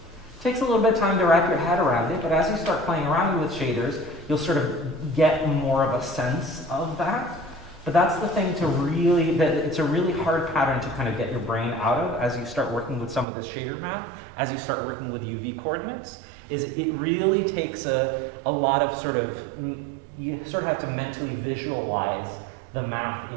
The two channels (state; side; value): drops out; left; at 13.2 s